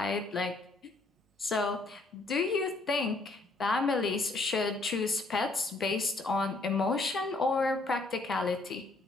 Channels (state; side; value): quieter; right; 3.2 dB